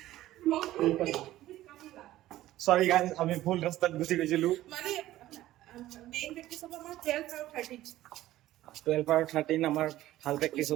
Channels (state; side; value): quieter; left; 14.9 dB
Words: সৰি গাইজ, আমি ভুল ৰাস্তাত গুচি গৈছিলো। মানে মেইন প্ৰেক্টিচ হ'ব আমাৰ 12 আৰু 13 আৰু 13 আমাৰ ভাল প্ৰেক্টিচ